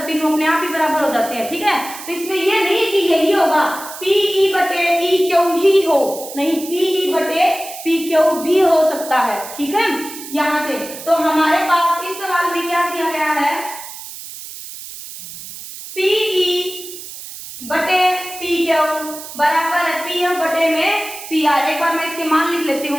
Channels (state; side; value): noise; right; hiss, 12 dB below the sound